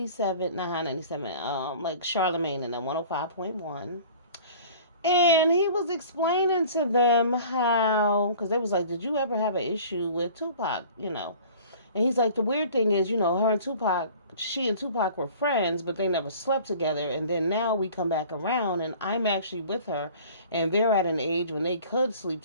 not Hot 97, like Charlemagne and then 105.1. And he was explaining to them how, because they was like, did you ever have an issue with Tupac, And he's like, the weird thing is, her and Tupac, she and Tupac were friends, but they never slept together. And then now we come back around and I'm actually with her and they're at an age when they could sleep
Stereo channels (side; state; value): both; inverted; correlation -0.46